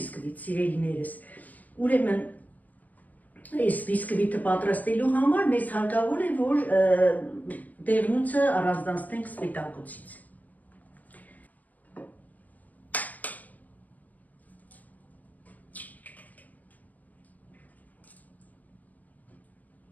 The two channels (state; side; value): late; right; 0.080 ms